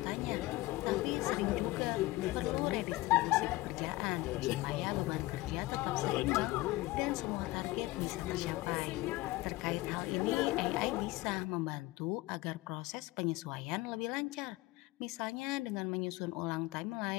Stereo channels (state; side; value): quieter; right; 19.4 dB